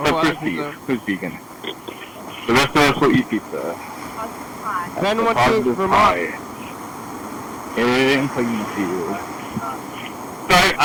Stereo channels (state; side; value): identical; both; correlation 1.00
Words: for Steve, who's vegan. The rest of us will eat pizza. Ben went to Vermont. In Plainfield. So